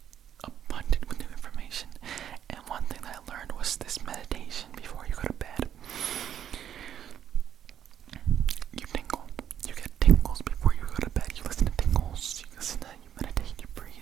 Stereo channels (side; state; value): left; quieter; 9.7 dB